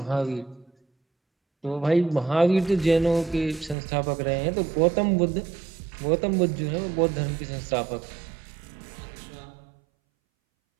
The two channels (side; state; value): left; drops out; at 3.8 s